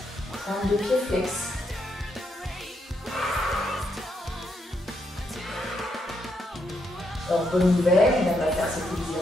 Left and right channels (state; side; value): normal; both; correlation 0.78